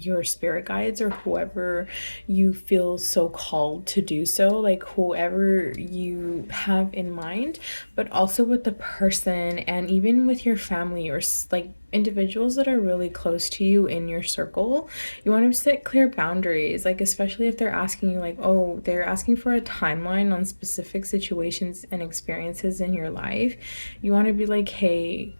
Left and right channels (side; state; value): both; inverted; correlation -1.00